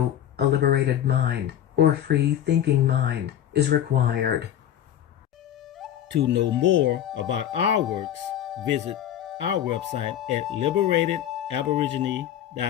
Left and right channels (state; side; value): quieter; right; 10.7 dB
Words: a liberated mind or free-thinking mind is required. To know more about our works, visit our website at